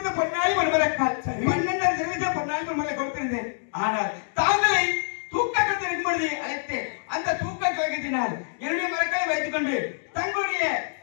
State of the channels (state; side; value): silent; right; digital silence